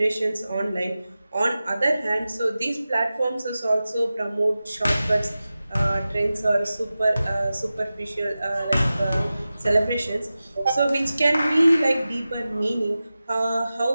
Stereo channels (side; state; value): both; inverted; correlation -0.95